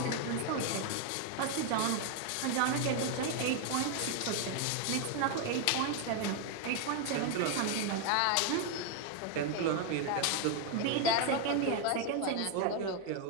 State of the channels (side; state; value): both; different; correlation 0.01